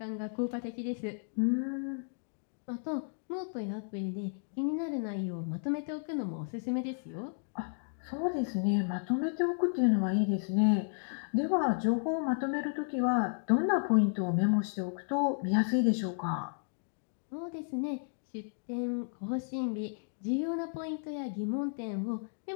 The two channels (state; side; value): silent; right; digital silence